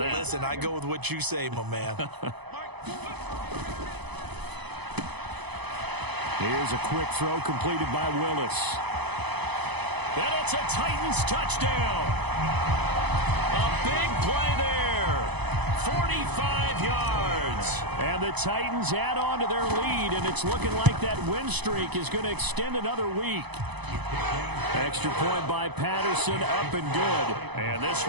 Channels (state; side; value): late; left; 0.99 ms